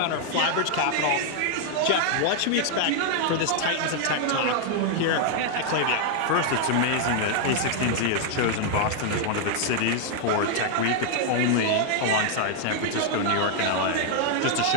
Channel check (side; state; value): both; different; correlation 0.00